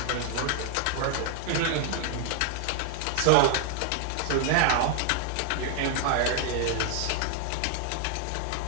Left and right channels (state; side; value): different; both; correlation 0.00